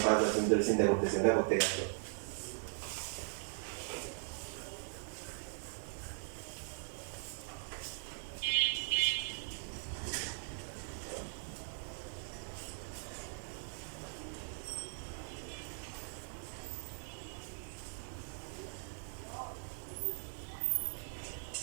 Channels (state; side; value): silent; left; 51 dB below the other